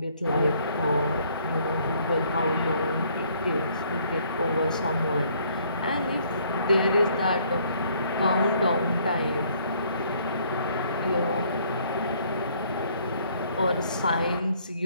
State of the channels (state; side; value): inverted; both; correlation -0.63